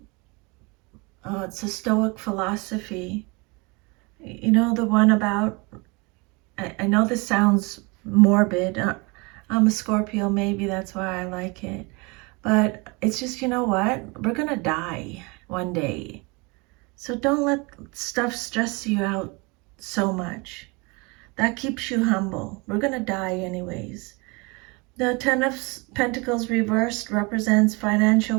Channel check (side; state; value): left; quieter; 28.1 dB